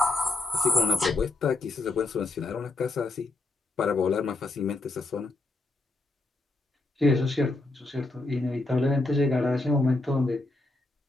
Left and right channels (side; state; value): right; quieter; 3.0 dB